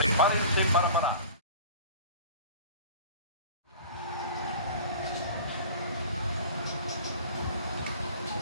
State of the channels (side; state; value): both; inverted; correlation -0.40